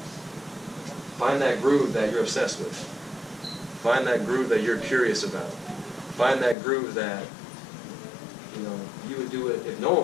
Find that groove that you're obsessed with. Find that groove that you're curious about. Find that groove that, you know, you would do it if no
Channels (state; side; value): drops out; right; at 6.6 s